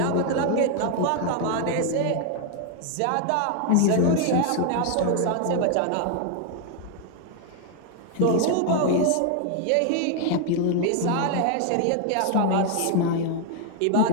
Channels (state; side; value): different; both; correlation 0.00